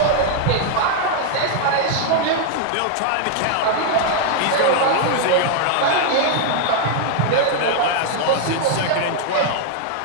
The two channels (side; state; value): both; different; correlation 0.00